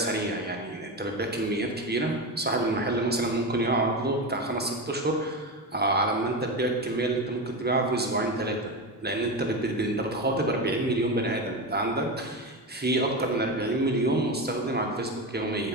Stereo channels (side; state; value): both; normal; correlation 0.19